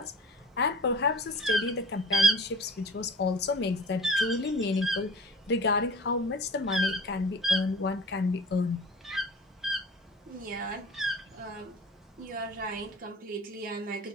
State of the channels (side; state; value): both; normal; correlation 0.40